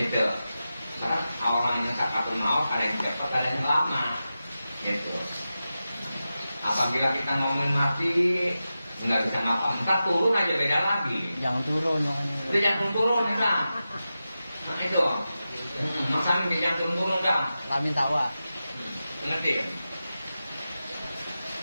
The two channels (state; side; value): inverted; both; correlation -0.92